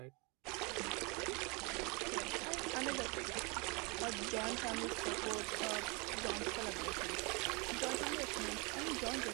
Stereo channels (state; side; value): quieter; left; 29.6 dB